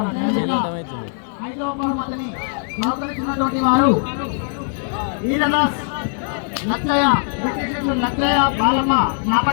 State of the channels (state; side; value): silent; right; 58 dB below the other